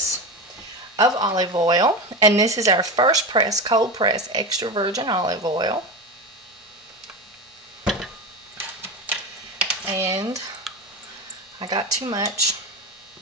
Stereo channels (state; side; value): normal; both; correlation 0.21